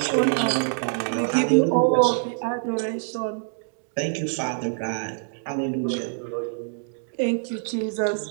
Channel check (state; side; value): silent; left; digital silence